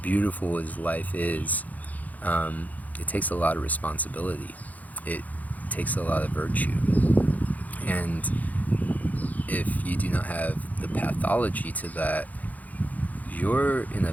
as life is, it takes a lot of responsibility. It takes a lot of virtue. And if you do not have the pathology to that, you're in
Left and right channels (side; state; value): right; late; 0.078 ms